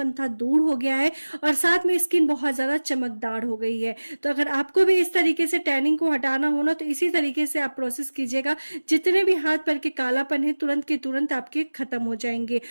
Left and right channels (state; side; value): inverted; both; correlation -1.00